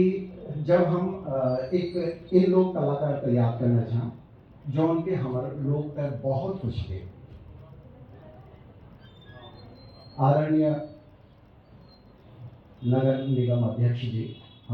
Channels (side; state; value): both; identical; correlation 1.00